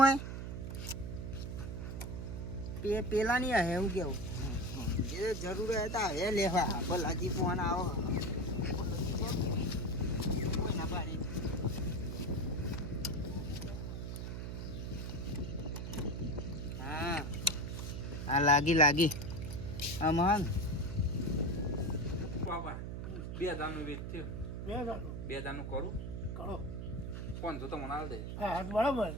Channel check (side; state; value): right; noise; hum, 5 dB below the sound